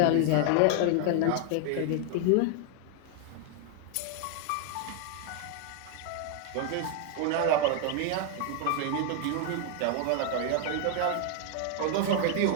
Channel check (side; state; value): both; different; correlation 0.00